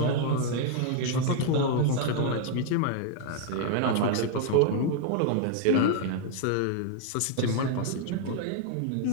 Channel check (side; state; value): both; different; correlation 0.00